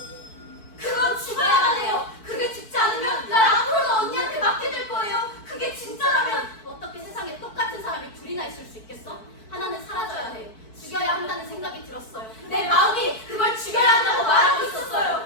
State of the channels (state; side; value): late; right; 4.5 ms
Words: 그건 죽어야만 해요. 그게 죽지 않으면 날 앞으로도 언니한테 맡게 될 거예요. 그게 진짜라면. 어떻게 세상에 똑같은 사람이 둘이나 있을 수 있겠어? 하나는 사라져야 해. 죽여야 한다는 생각이 들었어요. 내 마음이 그걸 죽여야 한다고 말하고